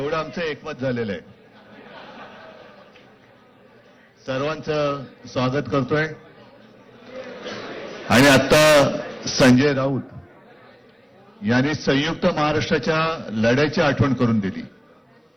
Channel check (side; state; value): both; identical; correlation 1.00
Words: आमचं एकमत झालेलं आहे. सर्वांचं स्वागत करतोय. आणि आता संजय राऊत यांनी संयुक्त महाराष्ट्राच्या लढ्याची आठवण करून दिली.